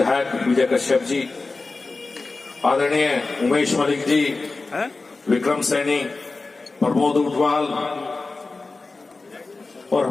विजय कश्यप जी, आदरणीय उमेश मलिक जी, विक्रम सैनी, प्रमोद उटवाल और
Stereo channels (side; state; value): right; quieter; 3.7 dB